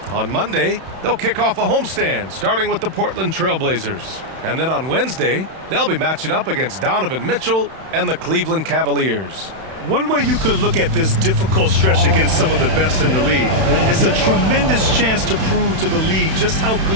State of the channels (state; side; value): late; left; 31 ms